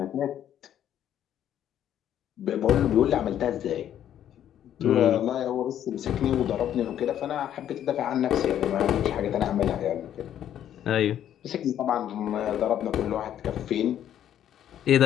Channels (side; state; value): right; quieter; 10.6 dB